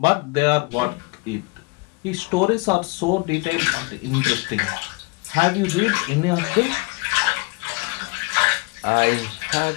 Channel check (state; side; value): quieter; right; 28.8 dB